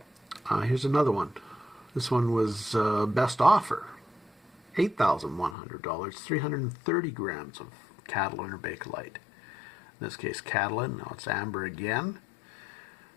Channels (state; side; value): drops out; right; at 5.6 s